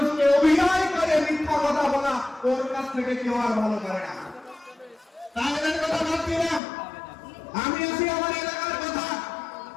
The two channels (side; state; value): right; drops out; at 6.6 s